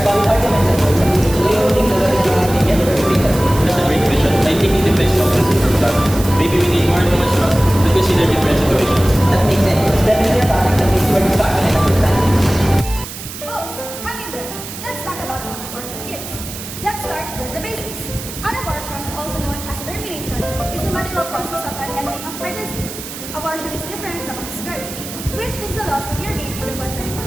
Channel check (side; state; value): right; noise; hiss, 11 dB below the sound